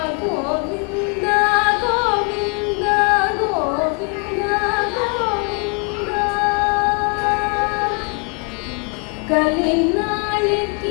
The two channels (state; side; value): quieter; right; 35.7 dB